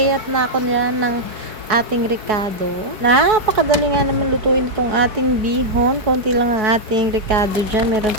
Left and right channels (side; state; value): left; late; 4.7 ms